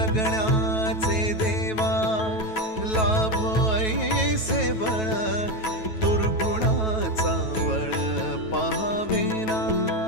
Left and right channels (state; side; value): late; right; 9.2 ms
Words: देवा लाभ ऐसे बळ दुर्गुणाचा वळ पाहावेना